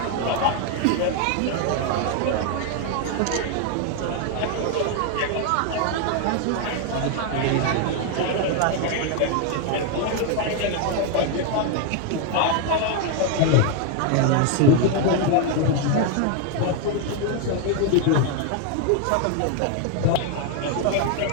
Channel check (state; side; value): different; both; correlation 0.01